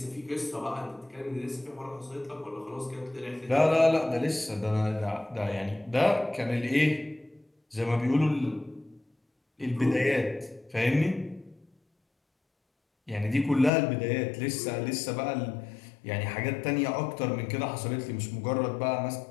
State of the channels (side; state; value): right; drops out; at 13.7 s